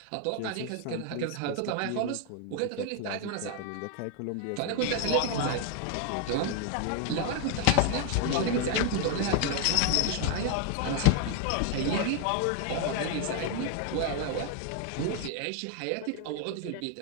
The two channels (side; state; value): both; different; correlation 0.00